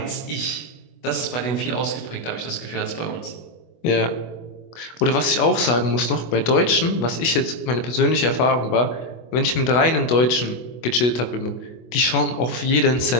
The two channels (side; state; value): right; late; 24 ms